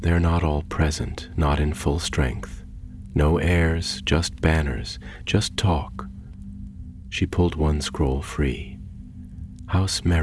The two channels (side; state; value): both; identical; correlation 1.00